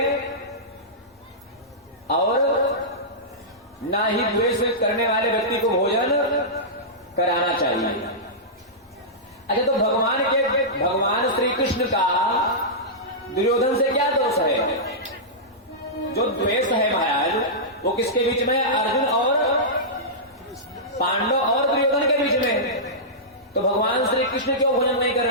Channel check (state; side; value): normal; both; correlation -0.14